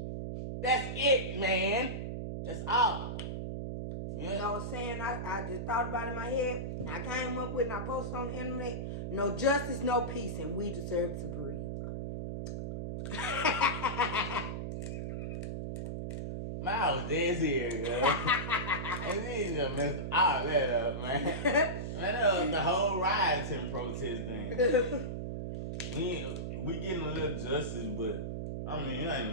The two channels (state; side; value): noise; right; hum, 4 dB below the sound